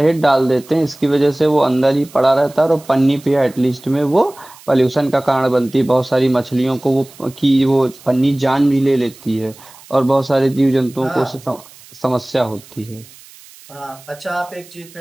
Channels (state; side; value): noise; right; hiss, 23 dB below the sound